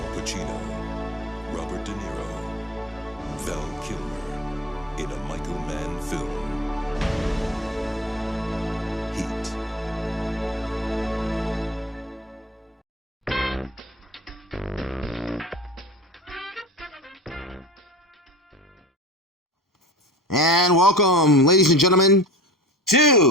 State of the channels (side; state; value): both; normal; correlation 0.35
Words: Pacino, Robert De Niro, Val Kilmer, in a Michael Mann film. Heat. And welcome, ladies and gentlemen,